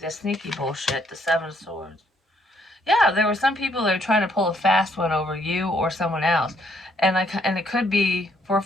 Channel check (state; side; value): normal; both; correlation 0.69